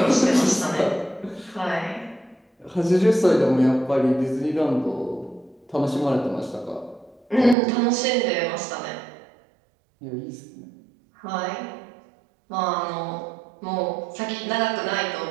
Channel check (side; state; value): left; drops out; at 7.6 s